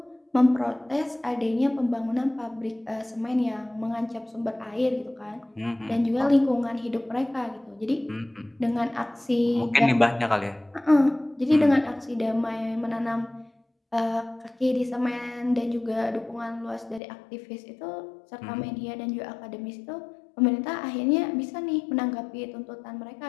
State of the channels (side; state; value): right; drops out; at 17.0 s